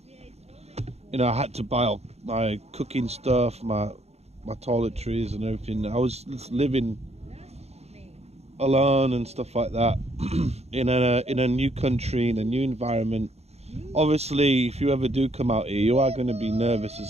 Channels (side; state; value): left; late; 0.31 ms